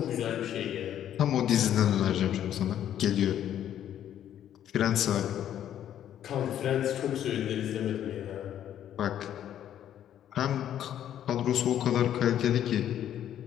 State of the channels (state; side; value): quieter; right; 10.7 dB